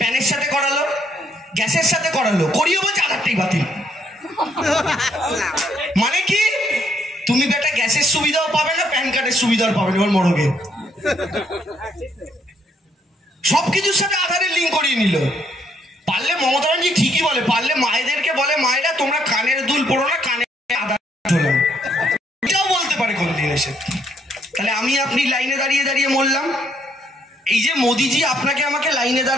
সাথে করালো, গ্যাসের সাথে করালো, করিয়ে বলছে আধারটাই বাতিল। মানে কি? তুমি বেটা গ্যাসের সুবিধাও পাবে না, প্যান কার্ডের সুবিধাও পাবে না, এবার মরগে। সবকিছুর সাথে আধারের লিঙ্ক করিয়ে নিল। পারলে মমতা ব্যানার্জি ঠিকই বলে, পারলে মায়েদেরকে বলে, মায়েরা তোমরা কানের দুল পড়ো না, কানে আধার ঝোলাও। এটাও বলতে পারে কোন দিন এসে। তাহলে আমি আপনি লাইনে দাঁড়িয়ে দাঁড়িয়ে মরলাম। এই যে মোদিজি আপনাকে আমাকে লাইনে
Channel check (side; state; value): both; normal; correlation 0.71